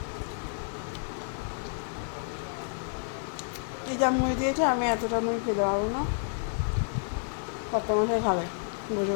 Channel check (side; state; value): right; silent; digital silence